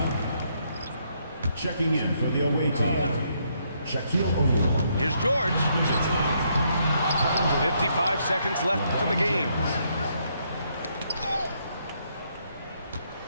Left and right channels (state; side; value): inverted; both; correlation -0.73